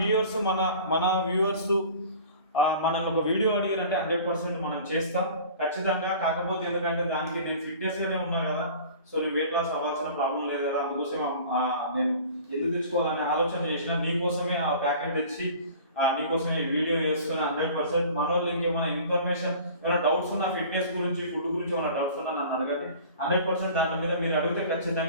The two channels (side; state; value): both; inverted; correlation -0.44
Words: మనల్ని ఒక వీడియో అడిగినంటే 100% మనం చేస్తాం ఖచ్చితంగా. కాకపోతే ఎందుకంటే దానికి నేను ఫిట్నెస్గానే ఉన్నా కదా, సో నేను వెయిట్ లాస్ అవ్వాల్సిన ప్రాబ్లం లేదు కదా, అందుకోసం నేను ఎందుకు తెచ్చుకోవాలనే ఆలోచన చేసిన. నీకోసమే ఆ ప్యాకెట్ తెచ్చి నీకోసమే వీడియో చేస్తున్నా 100%. మన వాళ్ళు ఇంకేమైనా ఇన్ఫర్మేషన్, ఏమైనా డౌట్స్ ఉన్నా ఫిట్నెస్ గురించి, ఫుడ్ గురించి ఏమైనా డౌట్స్ ఉన్నా నన్ను అడగండి. 100% దాని మీద మీరు అడిగితే